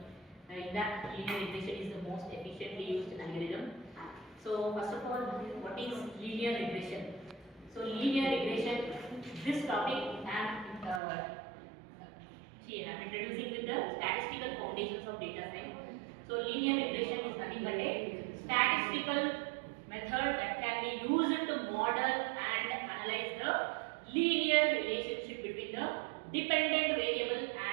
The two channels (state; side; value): drops out; left; at 11.0 s